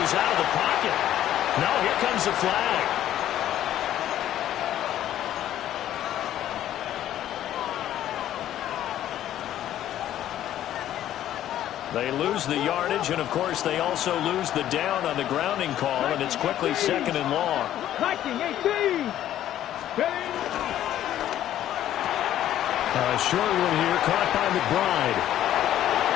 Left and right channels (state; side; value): quieter; right; 12.1 dB